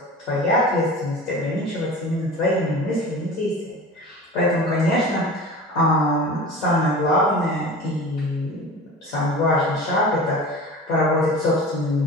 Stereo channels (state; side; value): normal; both; correlation 0.36